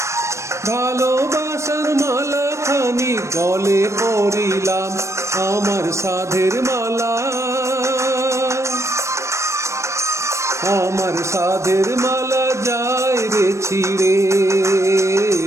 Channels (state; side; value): late; left; 0.14 ms